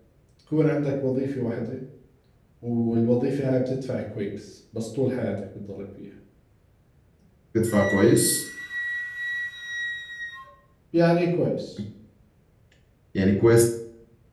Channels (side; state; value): both; identical; correlation 1.00